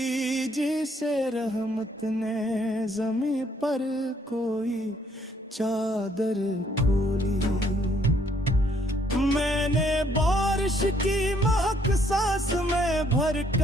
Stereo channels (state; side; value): normal; both; correlation 0.67